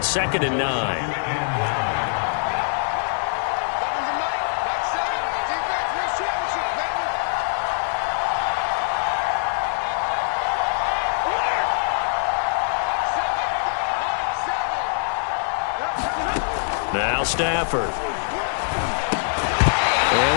2nd and 9. Now Stafford. And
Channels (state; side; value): silent; right; digital silence